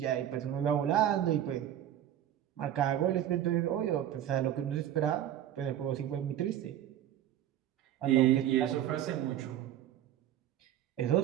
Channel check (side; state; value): left; quieter; 11.4 dB